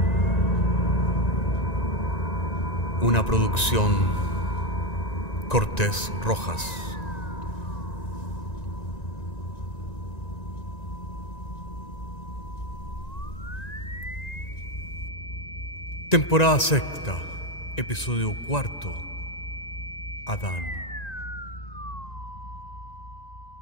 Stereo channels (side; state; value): right; late; 1.9 ms